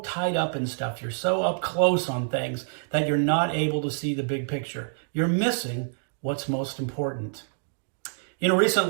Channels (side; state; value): left; silent; digital silence